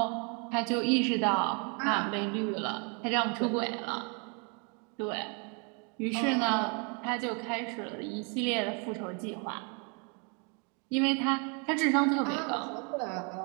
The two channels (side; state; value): left; quieter; 35.5 dB